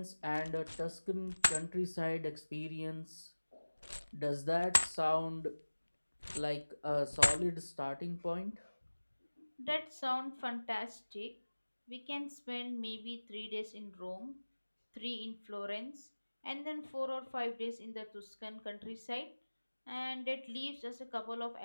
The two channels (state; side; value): inverted; both; correlation -1.00